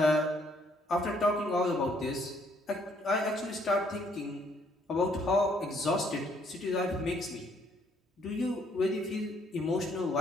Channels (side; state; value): both; normal; correlation 0.67